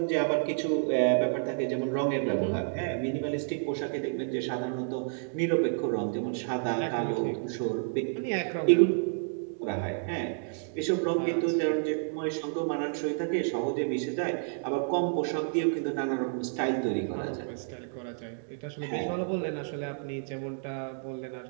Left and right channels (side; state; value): left; silent; digital silence